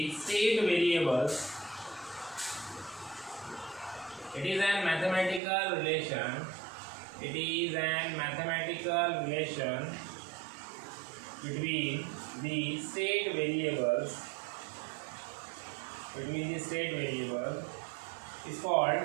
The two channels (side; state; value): left; drops out; at 5.4 s